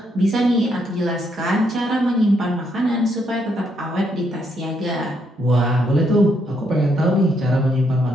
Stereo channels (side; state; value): both; normal; correlation 0.75